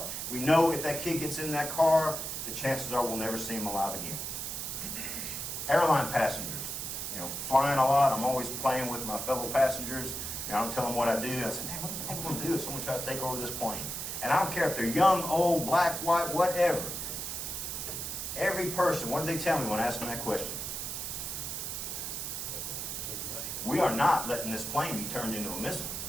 We know if that kid gets in that car, the chances are we'll never see him alive again. Airline passengers, you know, flying a lot. I'm always playing with my fellow passengers. You know, I'm telling them what I do. I say, "Man, what the heck am I going to do if someone tries to take over this plane?" And I don't care if they're young, old, black, white, whatever. Every person, what do they tell me when I ask them that question? We are not letting this plane be turned into a missile.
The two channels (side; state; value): right; noise; hiss, 4 dB below the sound